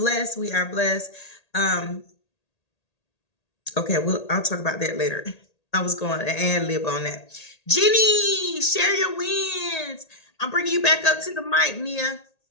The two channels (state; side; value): late; right; 1.8 ms